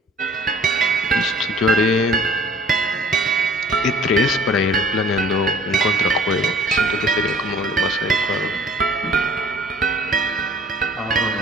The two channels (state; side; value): normal; both; correlation 0.51